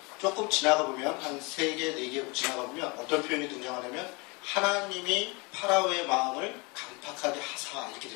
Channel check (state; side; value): quieter; right; 28.7 dB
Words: 조금 지나가 보면 한 3개, 4개 지나가 보면 어떤 표현이 등장하냐면 하나님이 파라오의 마음을 강팍하게 하사 이렇게